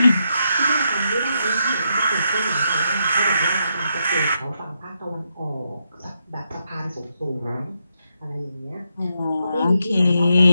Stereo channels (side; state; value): both; inverted; correlation -0.81